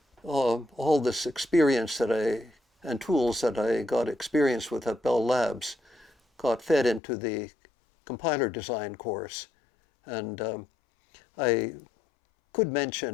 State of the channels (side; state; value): right; drops out; at 7.0 s